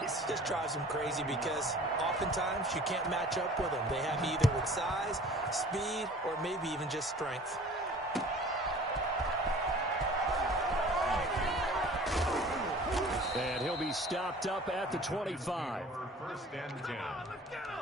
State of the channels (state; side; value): normal; both; correlation 0.46